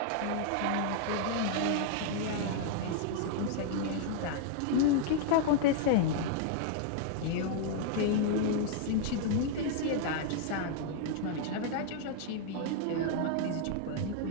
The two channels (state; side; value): different; both; correlation -0.01